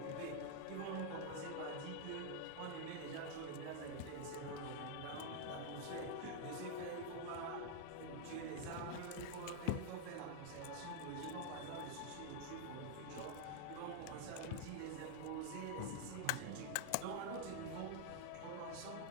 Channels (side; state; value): both; different; correlation 0.00